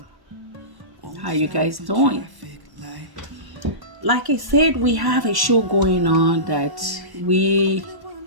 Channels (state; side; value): late; left; 1.1 ms